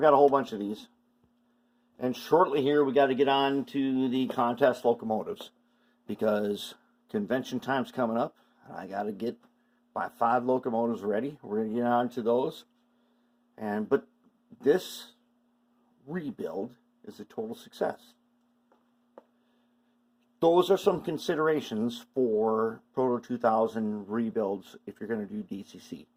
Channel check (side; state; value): both; identical; correlation 1.00